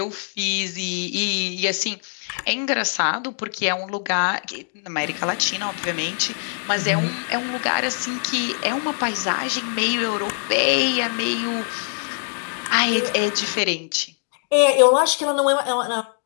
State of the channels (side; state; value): right; silent; 64 dB below the other